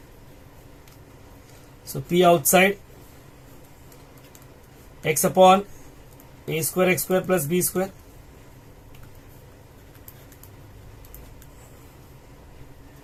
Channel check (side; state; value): both; identical; correlation 1.00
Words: So P outside X upon A square X square plus B square